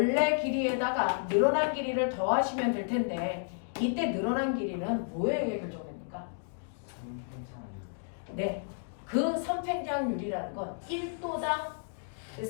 길이에다가 늘어난 길이를 더하시면 될 텐데 이때 늘어난 길이는 뭐에 의해 결정됩니까? 네, 그 선팽장률이라는 건 1도당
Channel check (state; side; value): silent; right; digital silence